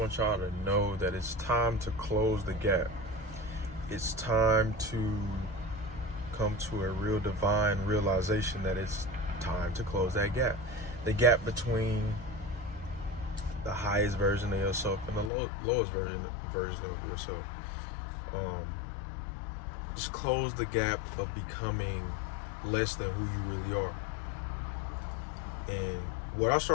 y'all to know that it's time to close the gap. It's time to come to a real divine realization that it's time to close that gap. The gap between the highest version of yourself and the lowest version of yourself. Just close the gap of becoming less than who you really are. And what I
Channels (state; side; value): drops out; right; at 15.3 s